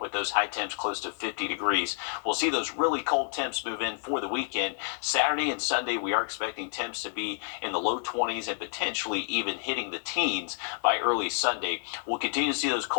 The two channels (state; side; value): silent; right; 58 dB below the other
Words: with those high temps close to 50 degrees. We'll see those really cold temps move in for the weekend. Saturday and Sunday, we are expecting temps to be in the low 20s and potentially even hitting the teens by early Sunday. We'll continue to see those